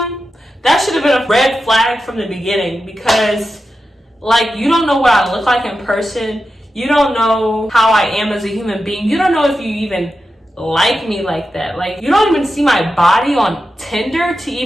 flag from the beginning because, like, you don't know what I look like in person. You don't know how I am as a human being. You don't know if you even like me like that. Like, you don't even see my body on Tinder to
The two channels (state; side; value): normal; both; correlation 0.90